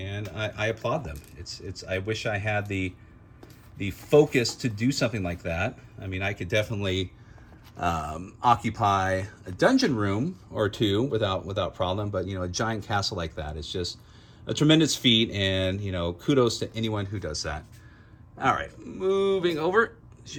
I applaud them. I wish I had the focus to do something like that. I mean, I could definitely occupy a dungeon room or two without problem, but a giant castle like that is just a tremendous feat, and kudos to anyone who does that. All right, moving over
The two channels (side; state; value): both; identical; correlation 1.00